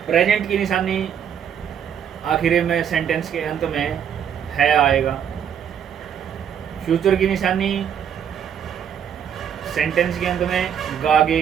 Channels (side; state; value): left; quieter; 8.5 dB